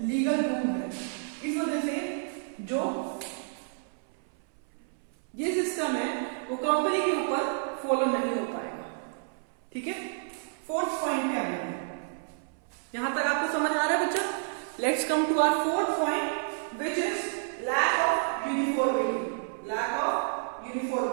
इस वजह से जो ये सिस्टम है वो कंपनी के ऊपर फॉलो नहीं हो पाएगा, ठीक है। फोर्थ पॉइंट क्या है, यहां तक आपको समझ आ रहा है बच्चा? Let's come to our fourth point which is lack of uniformity, lack of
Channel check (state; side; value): silent; left; 58 dB below the other